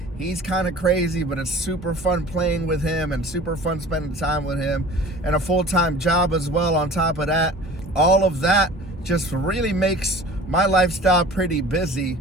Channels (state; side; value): normal; both; correlation 0.43